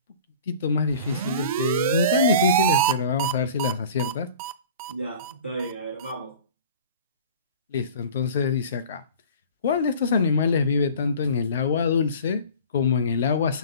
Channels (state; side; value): inverted; both; correlation -0.41